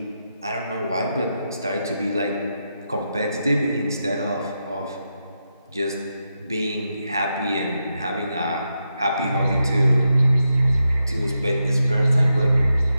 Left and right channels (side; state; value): both; inverted; correlation -0.86